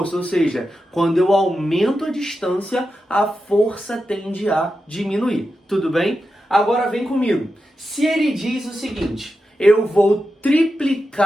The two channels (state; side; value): normal; both; correlation 0.90